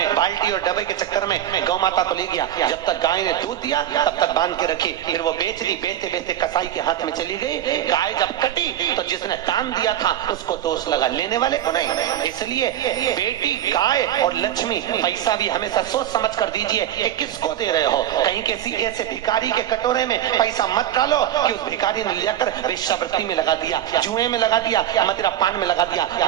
बाल्टी और डब्बे के चक्कर में गौ माता को ले गया। जब तक गाय ने दूध दिया तब तक बांध के रखी, फिर वो बेच दी, बेचते बेचते कसाई के हाथ में चली गई। गाय जब कटी तो जिसने दान दिया था उसको दोष लगा, लेने वाले को नहीं। इसलिए बेटी, गाय और लक्ष्मी, पैसा भी हमेशा सोच समझ कर दीजिए कि किसको दे रहे हो। कहीं किसी ऐसे भिखारी के कटोरे में पैसा मत डालो कि उस भिखारी ने लेकर वेश्यावृत्ति में लगा दिया, जुए में लगा दिया, मदिरा पान में लगा दिया,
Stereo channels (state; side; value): quieter; left; 11.6 dB